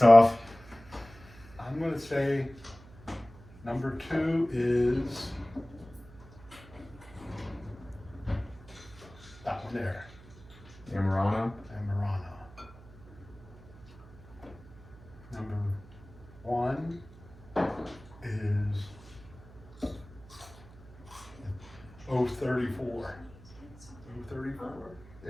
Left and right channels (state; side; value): noise; right; hum, 20 dB below the sound